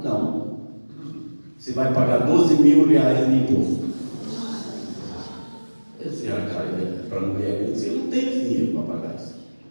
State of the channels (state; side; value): inverted; both; correlation -1.00